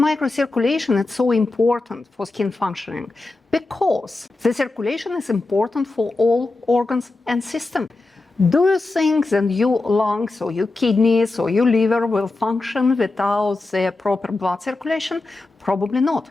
is so important for skin functioning? Because the circulation is important for all organs and systems. Do you think that your lungs or your kidneys or your liver will function without the proper blood circulation? Probably not.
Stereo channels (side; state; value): right; quieter; 3.2 dB